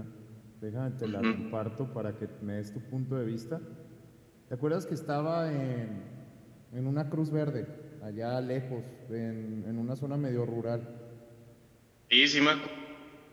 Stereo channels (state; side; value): identical; both; correlation 1.00